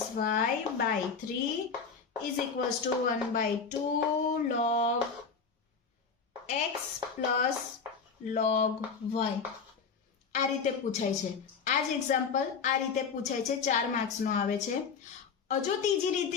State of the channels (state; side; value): quieter; right; 5.6 dB